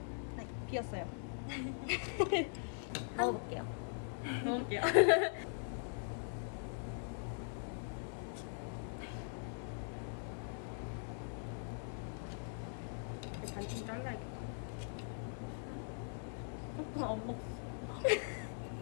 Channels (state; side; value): silent; right; digital silence